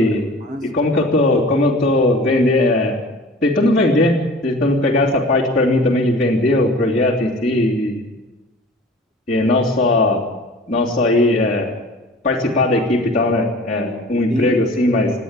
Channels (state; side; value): normal; both; correlation 0.43